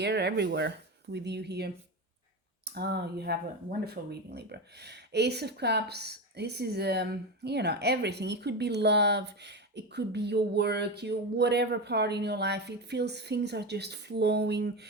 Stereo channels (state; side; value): normal; both; correlation 0.18